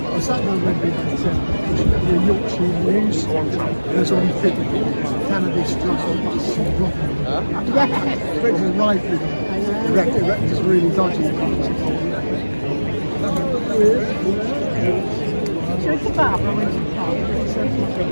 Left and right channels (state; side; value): inverted; both; correlation -1.00